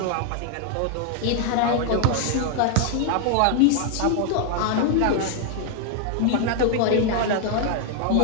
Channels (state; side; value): different; both; correlation 0.00